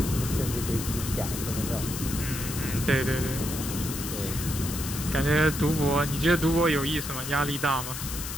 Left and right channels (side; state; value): left; noise; hiss, 7 dB below the sound